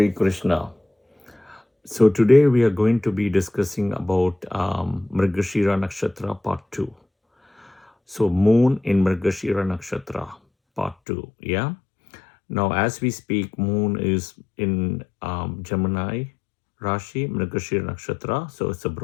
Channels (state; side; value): drops out; right; at 11.0 s